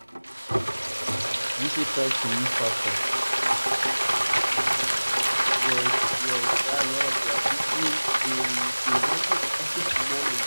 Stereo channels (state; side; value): inverted; both; correlation -1.00